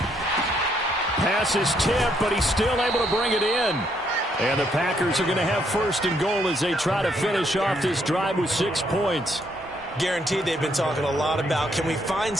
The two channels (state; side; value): normal; both; correlation 0.72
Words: Pass is tipped, but he's still able to bring it in. And the Packers are going to have 1st and goal as they try to finish off this drive with 6 points. Guaranteed they've been talking a lot about, can we find